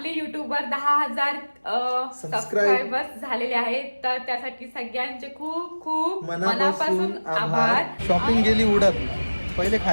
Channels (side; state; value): both; inverted; correlation -1.00